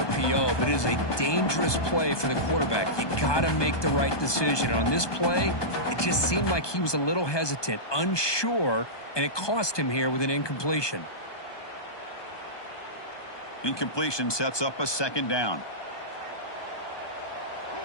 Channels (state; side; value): late; right; 1.2 ms